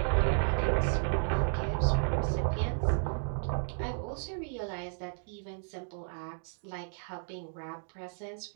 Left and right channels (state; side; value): silent; left; digital silence